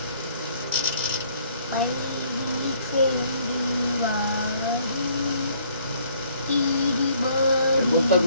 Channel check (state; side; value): inverted; both; correlation -0.63